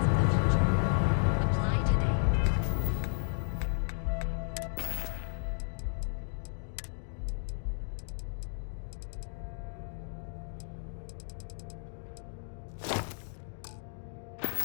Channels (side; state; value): right; silent; digital silence